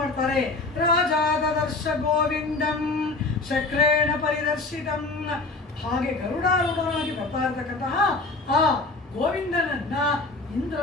ರಾಜಾದ ದರ್ಶ ಗೋವಿಂದಂ ಶಕ್ರೇಣ ಪರಿದರ್ಶಿತಂ. ಹಾಗೆ ಗರುಡಾರೂಢನಾಗಿ ಬರ್ತಾ ಇರತಕ್ಕಂತಹ ಆ ಗೋವಿಂದನನ್ನ ಇಂದ್ರ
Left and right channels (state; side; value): quieter; right; 3.4 dB